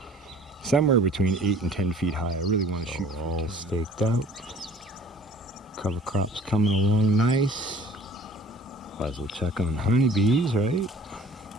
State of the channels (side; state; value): both; normal; correlation 0.50